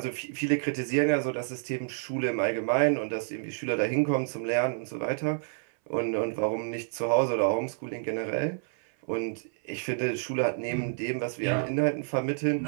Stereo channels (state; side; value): silent; left; 59 dB below the other